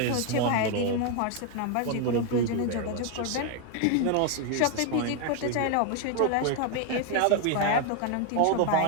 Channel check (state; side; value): different; both; correlation 0.01